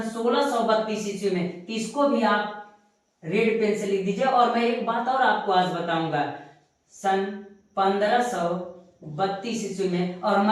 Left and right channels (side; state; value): both; identical; correlation 1.00